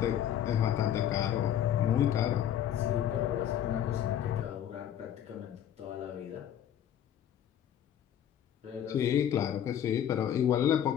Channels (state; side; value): quieter; right; 10.2 dB